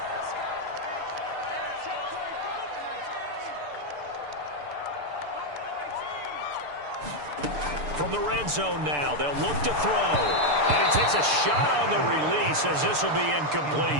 From the red zone now, they'll look to throw. And he takes a shot on the release as this will be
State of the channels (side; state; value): left; late; 6.8 ms